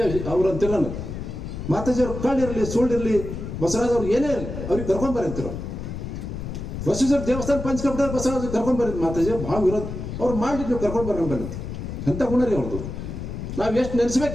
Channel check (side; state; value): left; noise; rumble, 7 dB below the sound